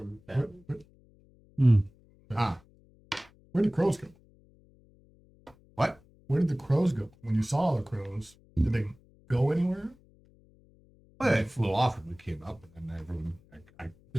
found? Ah, Where did crows go? what? Where did the crows go? When you saw the crows, did they go anywhere? Well, they flew off when we came up, and then everyone, I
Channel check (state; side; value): noise; left; hum, 29 dB below the sound